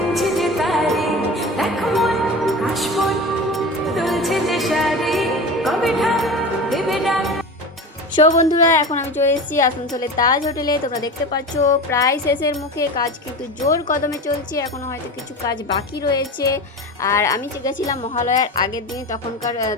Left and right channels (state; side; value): normal; both; correlation 0.29